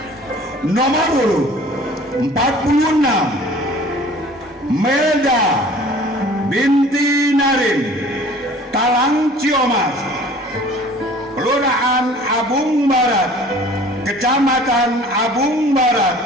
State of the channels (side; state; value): both; normal; correlation 0.48